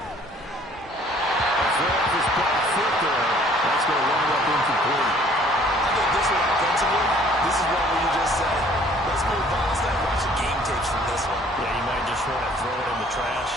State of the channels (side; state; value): both; normal; correlation 0.57